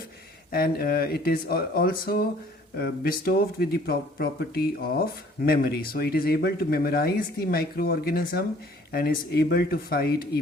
and it is also bestowed with the property of memory. So it is able to memorize the microorganism and is able to fight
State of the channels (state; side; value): normal; both; correlation 0.55